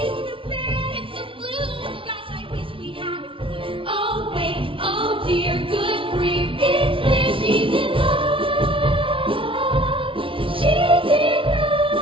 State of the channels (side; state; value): left; late; 0.25 ms